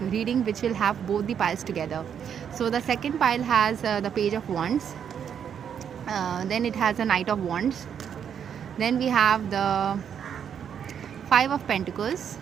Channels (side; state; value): left; quieter; 8.2 dB